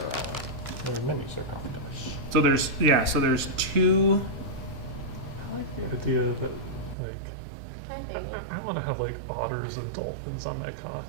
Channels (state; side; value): drops out; left; at 7.0 s